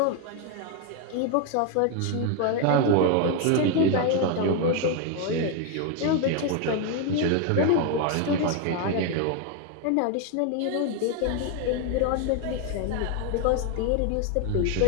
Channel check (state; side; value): different; both; correlation 0.01